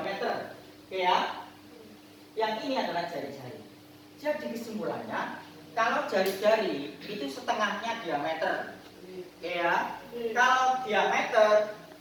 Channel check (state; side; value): identical; both; correlation 1.00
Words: Oke ya. Yang ini adalah jari-jari. Jadi kesimpulannya, kalau jari-jari itu setengahnya diameter. Oke ya. Kalau diameter